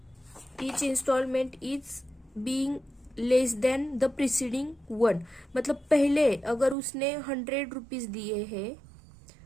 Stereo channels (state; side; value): drops out; left; at 6.8 s